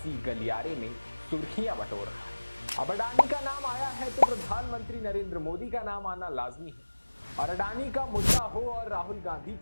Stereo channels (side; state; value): both; inverted; correlation -1.00